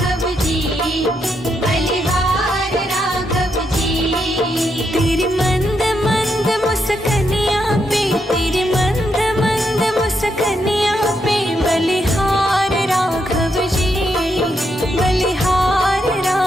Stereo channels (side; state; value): both; normal; correlation 0.80